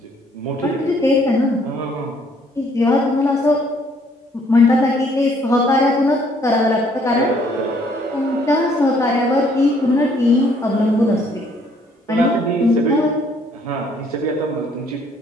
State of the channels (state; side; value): normal; both; correlation 0.64